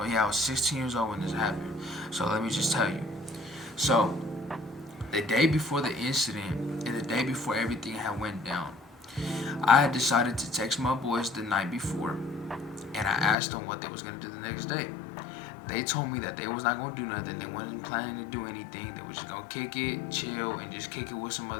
yeah, I was 16 years old when this happened. So let me just tell you. So the day before the incident and the day before everything had went down, I had decided to text my boys the night before, and I asked them what they was gonna do the next day. They told me that they was not gonna do nothing. They wasn't planning to do anything. They was just gonna kick it, chill, and just kick it with some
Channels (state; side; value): drops out; right; at 13.4 s